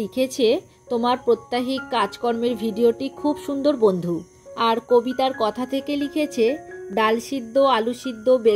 লিখেছে, তোমার প্রত্যাহিক কাজকর্মের ভিডিওটি খুব সুন্দর বন্ধু। আর কবিতার কথা থেকে লিখেছে, ডাল সিদ্ধ, আলু সিদ্ধ,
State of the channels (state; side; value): identical; both; correlation 1.00